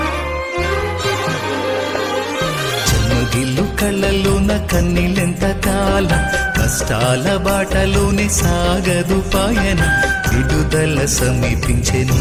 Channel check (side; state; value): both; identical; correlation 1.00